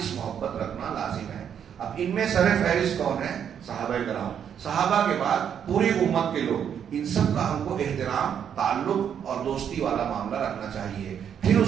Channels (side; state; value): left; quieter; 8.5 dB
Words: محبت رکھنا لازم ہے۔ اب ان میں سر فہرست کون ہے؟ صحابہ کرام۔ صحابہ کے بعد پوری امت کے لوگ، ان سب کا ہم کو احترام، تعلق اور دوستی والا معاملہ رکھنا چاہیے۔ پھر اس